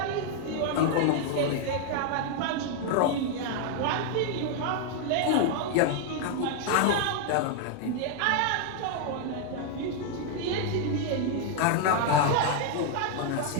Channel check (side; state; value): both; different; correlation 0.00